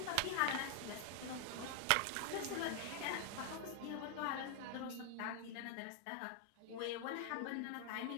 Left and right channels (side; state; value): both; different; correlation 0.00